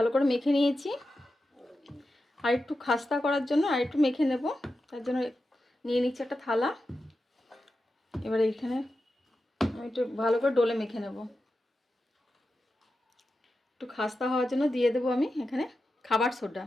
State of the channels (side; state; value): both; normal; correlation 0.91